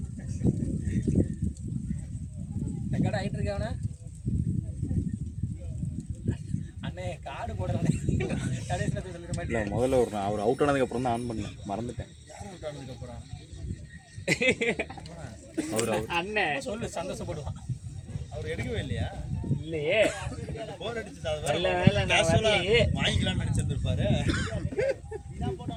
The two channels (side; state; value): both; identical; correlation 1.00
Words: கடை ஆகிட்டு இருக்கவன அண்ணே காடு போடுறேன் கடைசியில் சொல்லிட இல்லை மாட்டேன் முதல்ல ஒரு அவர் அவுட் ஆனதுக்கப்புறம் தான் ஆன் பண்ணேன் மறந்துட்டேன். அப்புறம் அவர் அண்ணன் சொல்லு சந்தோஷப்படுவான் அவர் எடுக்கவே இல்லையா இல்லையே போர் அடிச்சு நல்ல வேலை நான் வரலையே. வாங்கிக்கலாம்னு நினைச்சிருந்திருப்பாரு